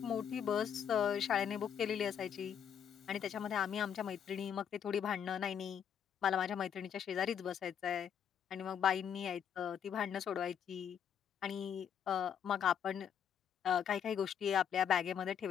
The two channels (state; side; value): quieter; right; 8.5 dB